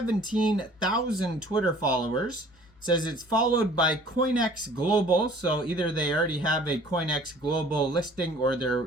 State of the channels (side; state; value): left; noise; hum, 30 dB below the sound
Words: Twitter followers. It says it's followed by COINEX Global. So either they already have a COINEX Global listing or they're